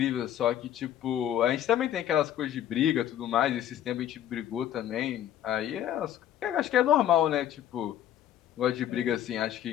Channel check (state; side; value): quieter; right; 11.4 dB